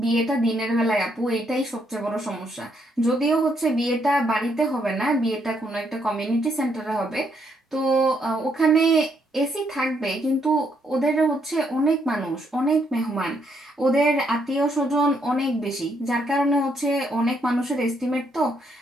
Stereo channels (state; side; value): normal; both; correlation 0.74